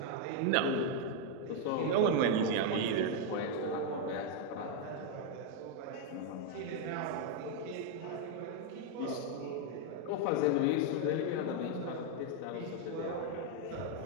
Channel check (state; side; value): different; both; correlation 0.01